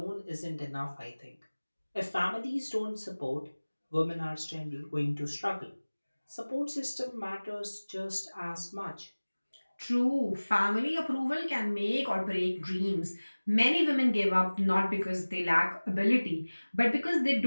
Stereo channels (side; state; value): both; inverted; correlation -1.00